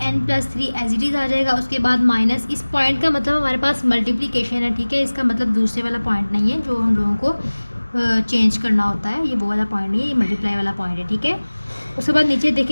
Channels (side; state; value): both; inverted; correlation -1.00